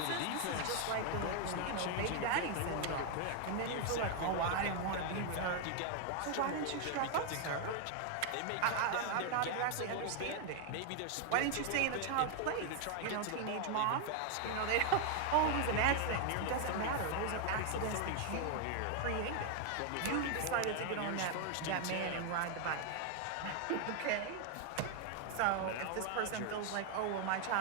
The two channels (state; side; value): different; both; correlation 0.00